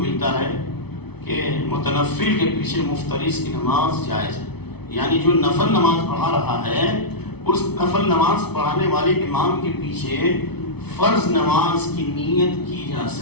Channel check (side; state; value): right; late; 0.98 ms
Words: ملتا ہے کہ متنفل کے پیچھے مفترض کی نماز جائز ہے. یعنی جو نفل نماز پڑھا رہا ہے اس نفل نماز پڑھانے والے امام کے پیچھے فرض نماز کی نیت کی جا